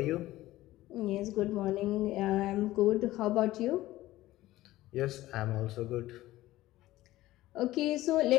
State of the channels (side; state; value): right; quieter; 16.4 dB